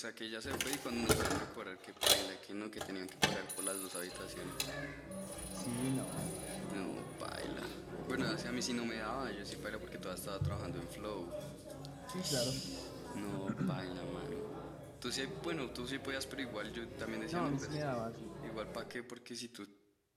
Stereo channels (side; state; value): both; identical; correlation 1.00